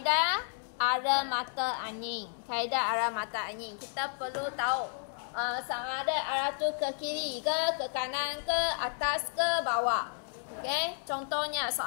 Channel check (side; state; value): right; silent; 56 dB below the other